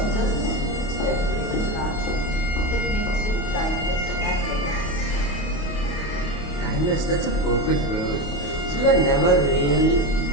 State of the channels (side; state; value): right; late; 28 ms